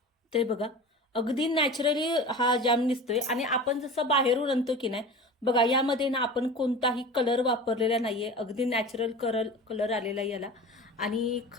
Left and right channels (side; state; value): both; normal; correlation 0.34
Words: ते बघा अगदी नॅचरली हा जॅम दिसतोय. आणि आपण जसं बाहेरून आणतो की नाही बघा यामध्ये ना आपण कोणताही कलर वापरलेला नाहीये. अगदी नॅचरल कलर आलेला याला. आणि